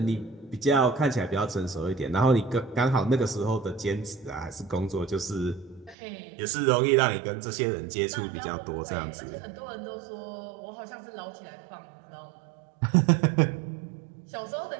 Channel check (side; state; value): left; drops out; at 6.0 s